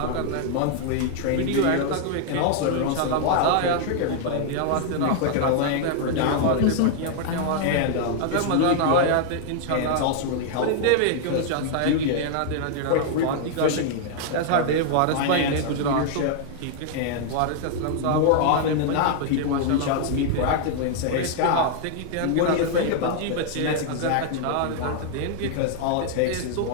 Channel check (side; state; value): both; different; correlation 0.00